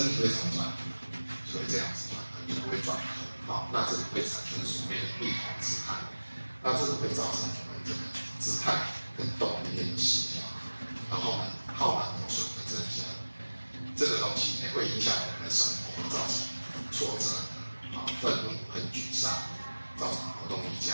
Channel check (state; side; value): inverted; both; correlation -1.00